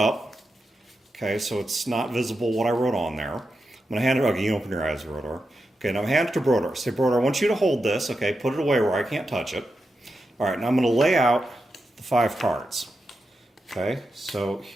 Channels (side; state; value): both; normal; correlation 0.88